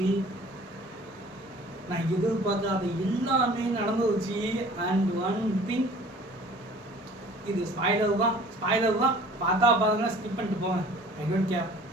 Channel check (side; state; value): both; normal; correlation 0.49